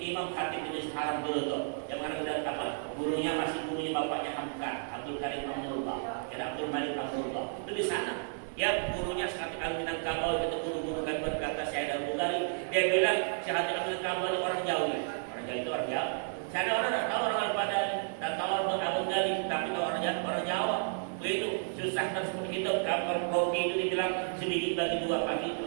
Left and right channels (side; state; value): left; silent; 56 dB below the other